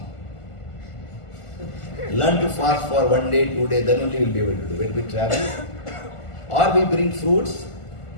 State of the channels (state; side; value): late; right; 1.5 ms